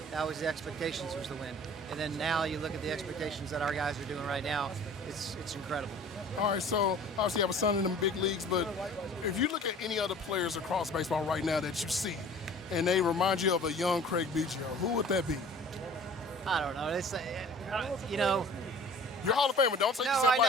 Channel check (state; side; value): normal; both; correlation 0.46